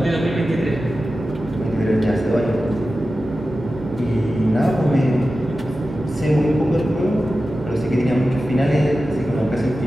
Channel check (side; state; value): right; noise; hum, 16 dB below the sound